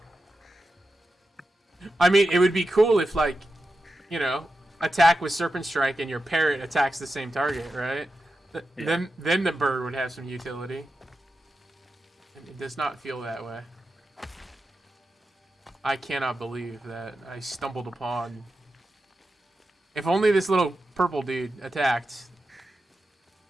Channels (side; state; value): both; normal; correlation 0.90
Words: I mean, it would be cool if like, you know, attack with serpent strike and your parrot attacks the same target, right? Yeah. Then the bird would have some utility. And it does not feel that way. I cannot believe that I stumbled upon... If only this little purple dude attacked,